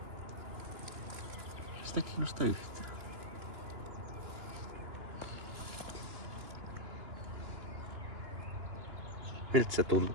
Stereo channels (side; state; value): left; late; 2.9 ms